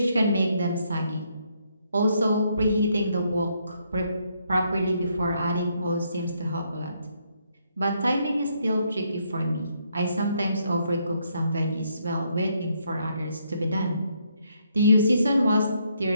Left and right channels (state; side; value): inverted; both; correlation -0.74